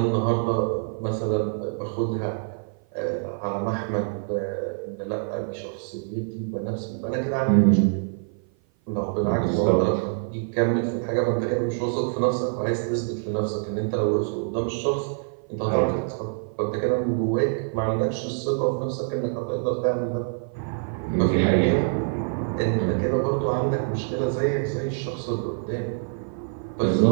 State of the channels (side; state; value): left; silent; 55 dB below the other